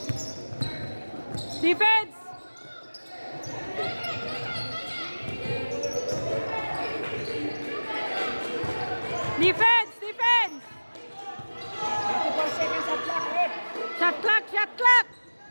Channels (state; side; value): inverted; both; correlation -1.00